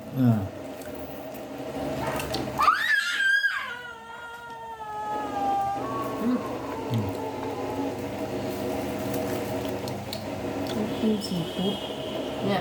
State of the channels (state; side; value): identical; both; correlation 1.00